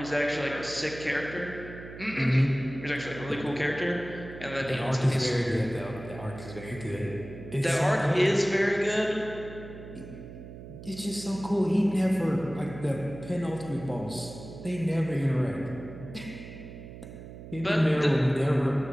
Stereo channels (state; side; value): noise; right; hum, 13 dB below the sound